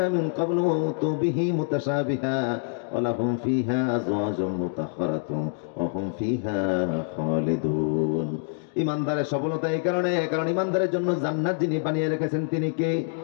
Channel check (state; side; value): silent; right; digital silence